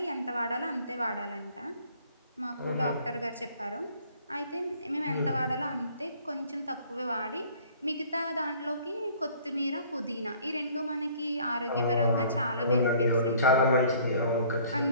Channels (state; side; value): inverted; both; correlation -0.55